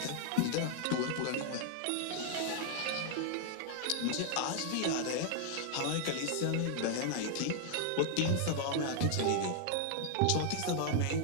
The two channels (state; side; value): different; both; correlation 0.00